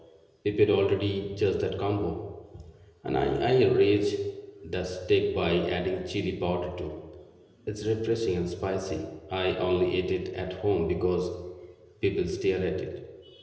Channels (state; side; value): identical; both; correlation 1.00